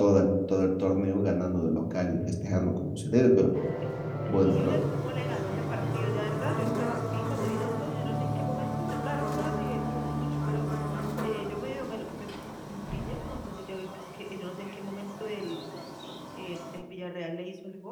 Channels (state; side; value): identical; both; correlation 1.00